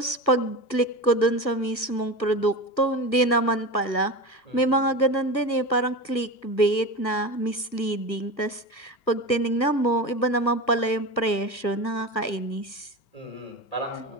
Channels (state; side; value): late; right; 1.4 ms